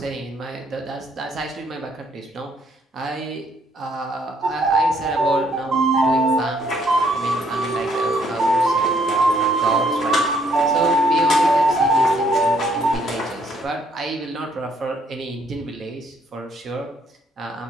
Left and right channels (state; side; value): normal; both; correlation 0.68